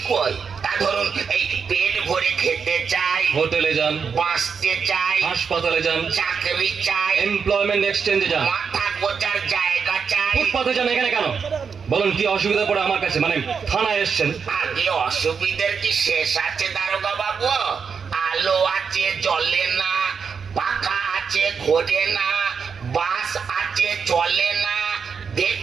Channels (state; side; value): quieter; left; 6.1 dB